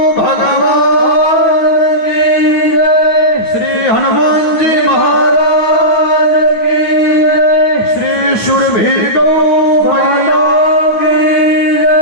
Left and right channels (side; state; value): right; late; 9.2 ms